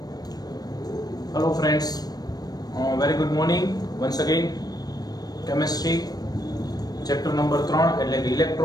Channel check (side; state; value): right; late; 0.19 ms